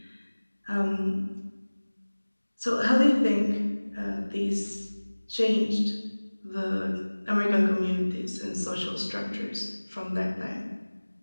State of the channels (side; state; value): both; inverted; correlation -1.00